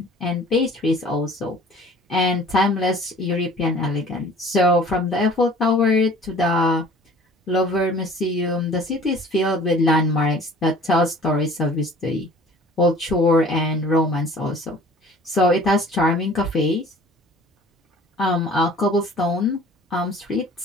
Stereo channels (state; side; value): normal; both; correlation 0.48